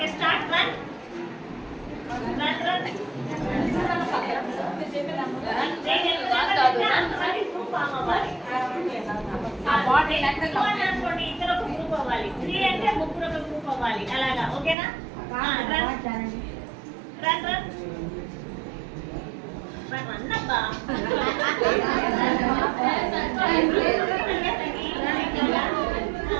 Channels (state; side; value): drops out; left; at 14.8 s